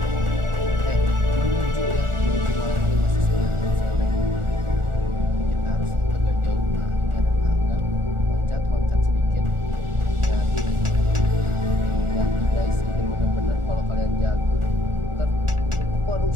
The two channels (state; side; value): late; left; 1.4 ms